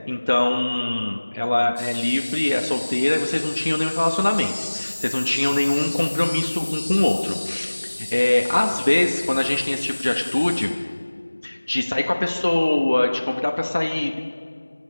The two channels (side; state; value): both; inverted; correlation -1.00